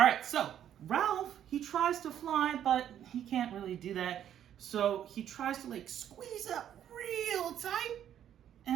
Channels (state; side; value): quieter; left; 10.3 dB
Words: right, so Ralph, he tries to fly, but he can't really do that. So he tries to like squeeze up real tight,